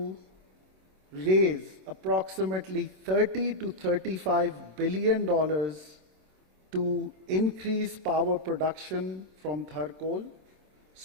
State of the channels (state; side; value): late; left; 26 ms